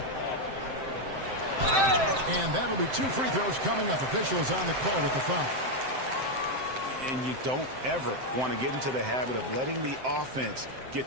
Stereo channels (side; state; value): left; late; 7.7 ms